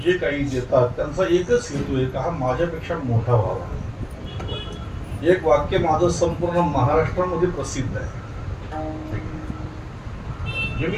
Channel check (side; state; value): both; identical; correlation 1.00